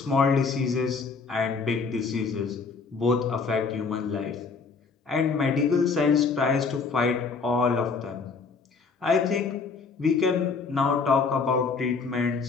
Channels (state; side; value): quieter; right; 4.9 dB